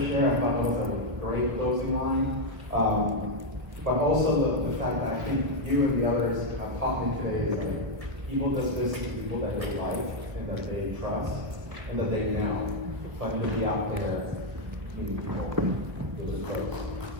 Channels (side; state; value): left; late; 1.7 ms